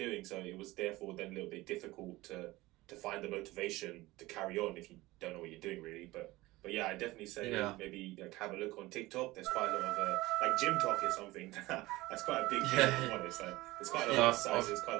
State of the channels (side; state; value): left; quieter; 19.4 dB